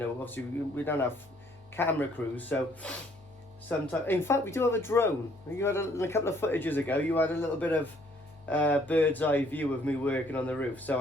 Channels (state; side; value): noise; left; hum, 27 dB below the sound